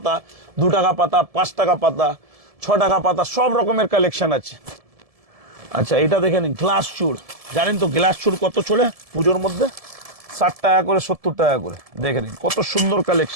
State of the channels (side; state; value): left; late; 1.7 ms